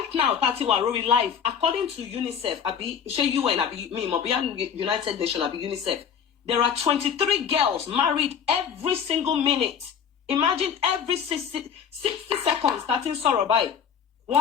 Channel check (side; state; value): right; quieter; 7.6 dB